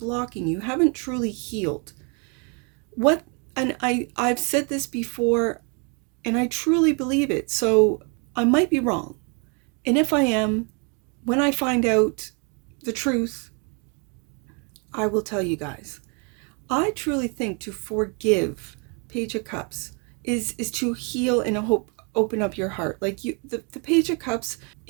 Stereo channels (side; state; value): left; quieter; 35.1 dB